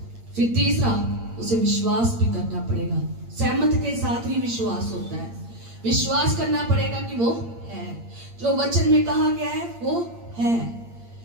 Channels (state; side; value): late; left; 8.7 ms